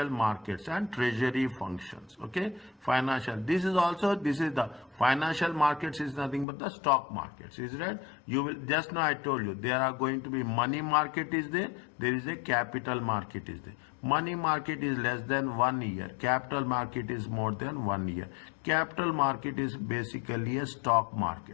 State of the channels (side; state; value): right; drops out; at 6.5 s